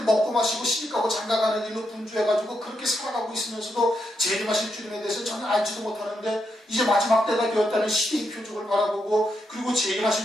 먹고 마시고 시집가고 장가가는 일로 분주해가지고 그렇게 살아가고 있으면서도 재림하실 주님에 대해서 전혀 알지도 못하는데 이제 마지막 때가 되었다는 시대의 표적을 바라보고, 그리고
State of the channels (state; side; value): normal; both; correlation 0.82